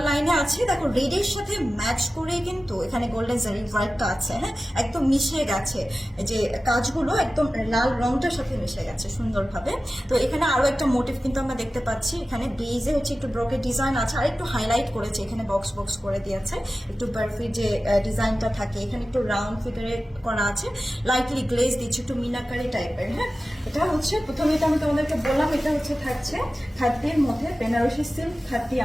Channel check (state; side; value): normal; both; correlation 0.95